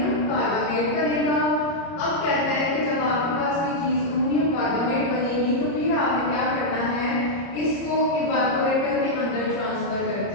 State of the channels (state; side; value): late; right; 30 ms